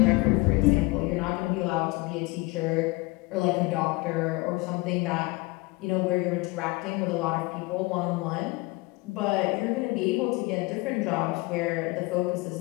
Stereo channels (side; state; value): right; quieter; 23.9 dB